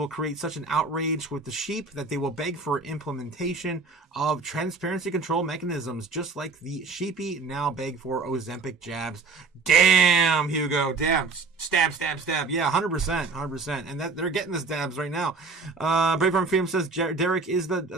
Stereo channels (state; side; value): quieter; left; 4.2 dB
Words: create such an outrage with the sheep that they will beg for implementation of transparency control mechanisms, just like the sheepy now beg for Ozempic jabs. Damn, Hugo. Damn. Stab. Yeah, 100%. And that they're getting the stabs right now. Brave Farm Freedom says Derek is